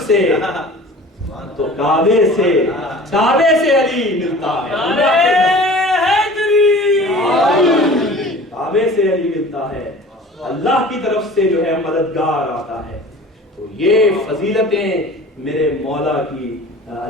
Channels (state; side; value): normal; both; correlation 0.42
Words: سے، تو کعبے سے علی ملتا ہے، کعبے سے علی ملتا ہے، اللہ کی طرف سے جو ہے مددگار آتا ہے۔ تو یہ فضیلتیں میرے مولا کی